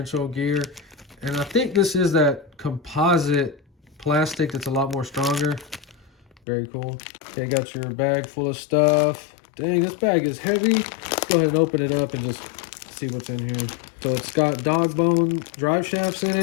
gear, and I think this is that composite plastic that's a lot more stronger. Very cool. Okay, got your bag full of stuff. Dang, this bag is heavy. Let's go ahead and open it up and just see what's in here. So it's got dog bone drive shafts in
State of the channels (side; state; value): right; drops out; at 6.4 s